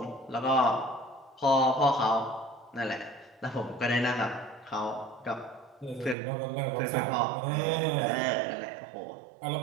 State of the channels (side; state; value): left; drops out; at 6.2 s